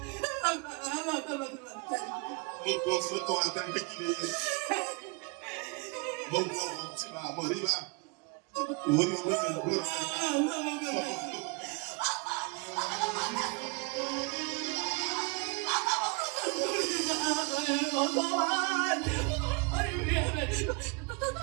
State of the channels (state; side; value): quieter; left; 31.4 dB